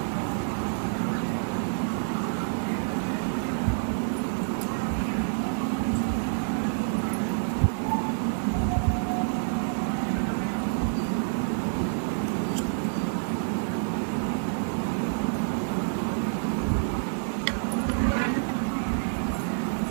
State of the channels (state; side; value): silent; left; digital silence